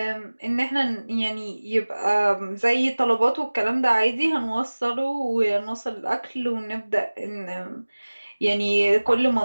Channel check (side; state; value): both; inverted; correlation -1.00